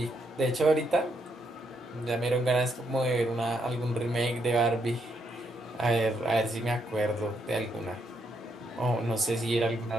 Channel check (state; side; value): normal; both; correlation 0.77